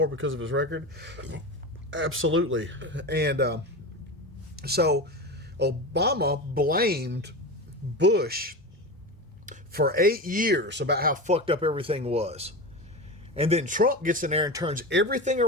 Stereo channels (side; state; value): both; normal; correlation 0.24